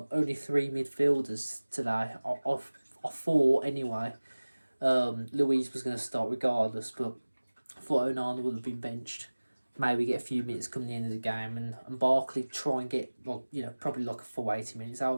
only three midfielders today. I thought anyway. Louise was going to start regardless, but I thought Onana would have been benched. Maybe get a few minutes coming the end of the game, and Barkley try and get, well, probably like a full 80 minutes out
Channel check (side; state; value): both; inverted; correlation -1.00